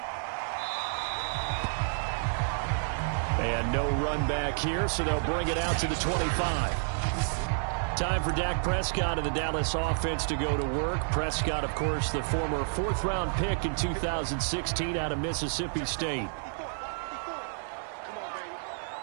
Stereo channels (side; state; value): left; silent; 58 dB below the other